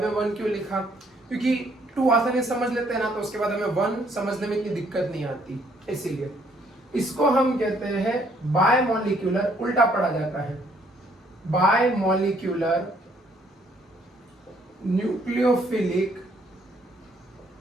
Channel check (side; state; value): both; normal; correlation 0.66